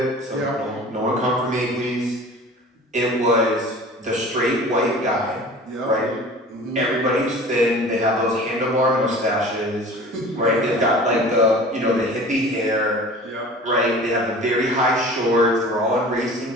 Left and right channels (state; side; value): normal; both; correlation 0.41